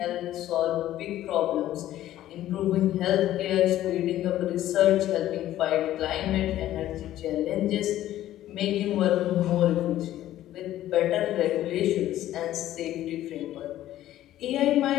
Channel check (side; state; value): right; quieter; 13.4 dB